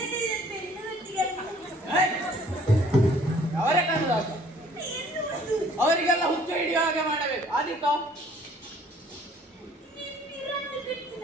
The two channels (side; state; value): both; normal; correlation 0.57